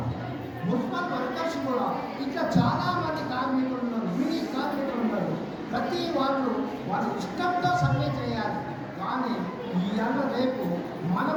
మున్సిపల్ వర్కర్స్ కూడా, ఇట్లా చాలామంది కార్మికులు ఉన్నారు, మినీ కార్మికులు ఉన్నారు. ప్రతి వాళ్ళు వాళ్ళ ఇష్టంతో సమ్మె చేయాలి. కానీ ఇవాళ రేపు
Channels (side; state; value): both; identical; correlation 1.00